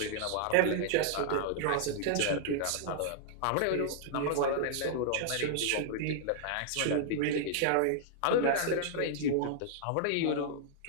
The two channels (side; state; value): both; different; correlation -0.01